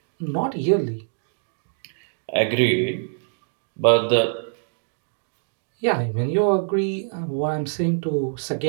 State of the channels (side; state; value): left; silent; digital silence